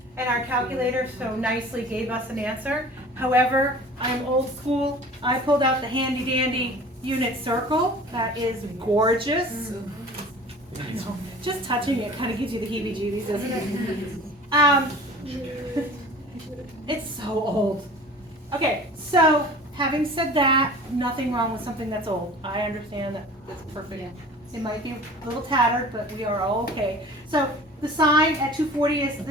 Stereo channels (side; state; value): both; normal; correlation 0.43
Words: and our calculator so nicely gave us an answer. However, I'm old school. I pulled out the handy dandy unit circle. That is gorgeous. I know. Just touching it kind of gives you the heebie-jeebies, doesn't it? It's so old. Okay, so having said that, nothing wrong with something that's old. I understand that it's perfect. Yeah. It might be a little tattered, but we are all okay. So the sine at 240 is